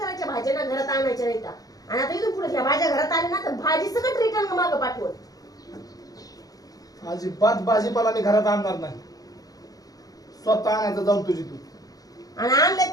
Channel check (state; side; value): late; right; 0.18 ms